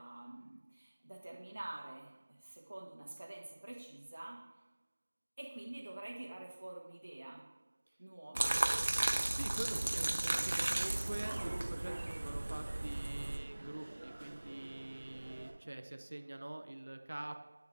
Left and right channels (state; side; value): inverted; both; correlation -1.00